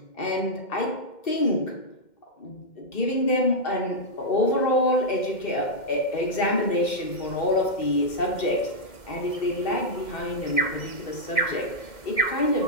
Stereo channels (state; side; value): late; right; 2.1 ms